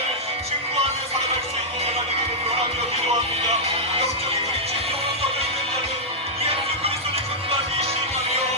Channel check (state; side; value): normal; both; correlation -0.07